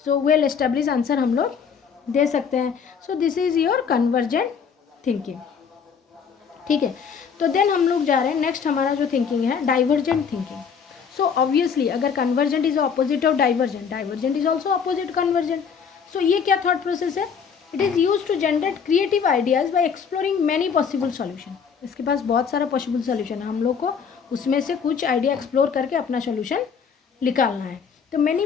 So well establish answer हम लोग दे सकते हैं। सो this is your convergent thinking, ठीक है। तो देन हम लोग जा रहे हैं नेक्स्ट, हमारा जो थिंकिंग है डाइवर्जेंट थिंकिंग। सो ऑब्वियसली अगर convergent is opposite of divergent, divergent is also opposite convergent. So ये क्या थॉट प्रोसेस है? It is use to generate creative ideas by exploring many possible solution. इसके पास बहुत सारा पॉसिबल सॉल्यूशन है, हम लोग को उसमें से कुछ आइडिया एक्सप्लोर करके अपना सॉल्यूशन निकालना है। तो many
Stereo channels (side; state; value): right; quieter; 6.6 dB